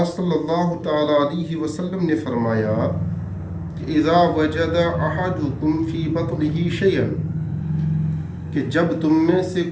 صلی اللہ تعالی علیہ وسلم نے فرمایا کہ اذا وجد احدکم فی بطنہ شیئا، کہ جب تم میں سے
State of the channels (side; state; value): both; identical; correlation 1.00